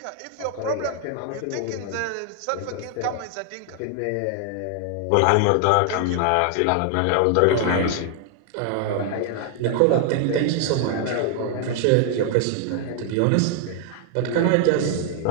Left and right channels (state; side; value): different; both; correlation 0.00